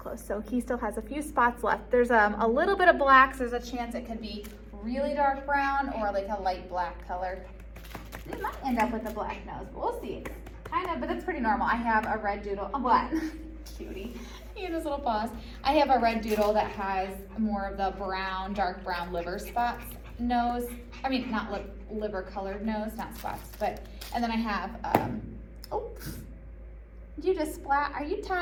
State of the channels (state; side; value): identical; both; correlation 1.00